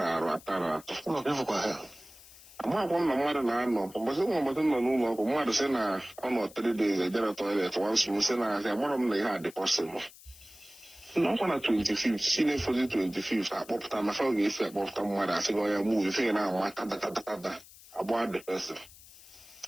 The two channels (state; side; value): noise; left; hiss, 21 dB below the sound